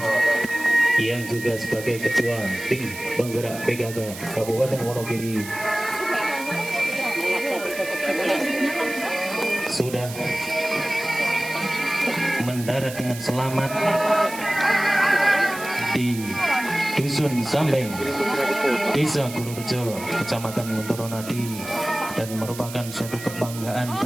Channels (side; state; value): right; noise; hiss, 13 dB below the sound